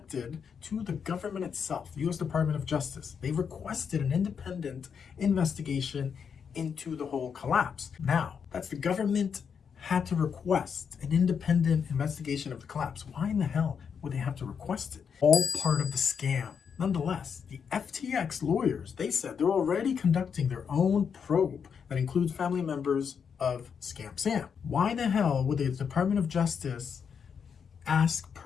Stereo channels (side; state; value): right; quieter; 6.8 dB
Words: to the government itself, the US Department of Justice. They requested an independent investigation into the whole collapse. Now, that's the government had to request an independent investigation of the collapse. Why in the hell would they have to request it? All part of the scam. Nonetheless, the FTX lawyers, they said they're already conducting their own probe that includes family members of Scam Sam. Why the hell would the Department of Justice ask